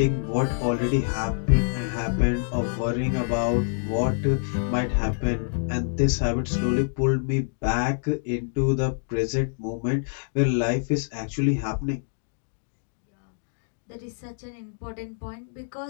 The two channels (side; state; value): right; silent; digital silence